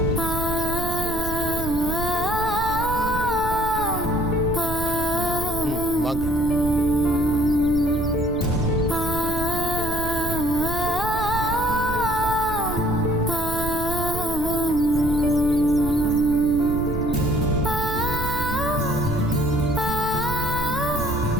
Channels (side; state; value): right; noise; rumble, 7 dB below the sound